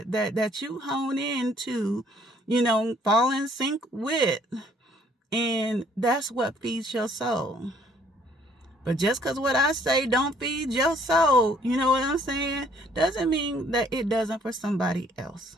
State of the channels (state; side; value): normal; both; correlation 0.62